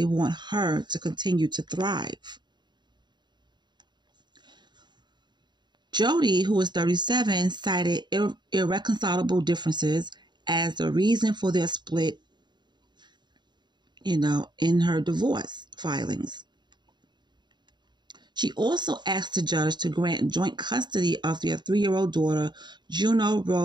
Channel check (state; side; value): late; left; 0.21 ms